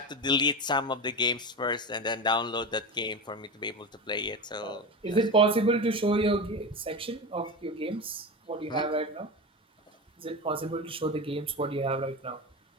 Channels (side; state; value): both; normal; correlation 0.22